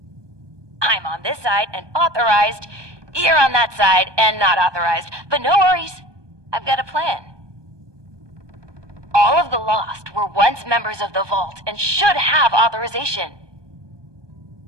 I'm on this side and authorized. You're on that side and not authorized. But no worries. I've got a plan. All of the Lost were once members of the Vault and should have authorization.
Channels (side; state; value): left; late; 1.2 ms